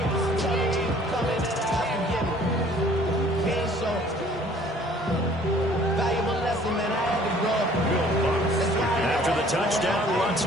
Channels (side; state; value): both; normal; correlation 0.55